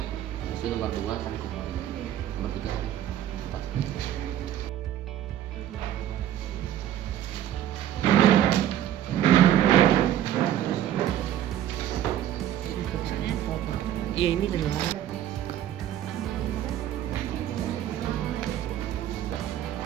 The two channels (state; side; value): quieter; left; 11.6 dB